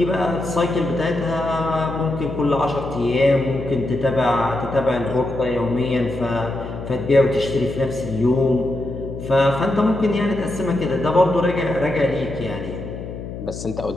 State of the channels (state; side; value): noise; left; hum, 9 dB below the sound